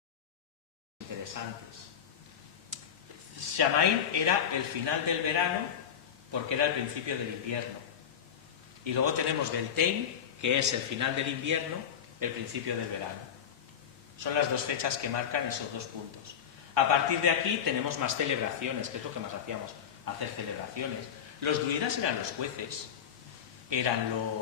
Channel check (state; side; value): quieter; right; 8.3 dB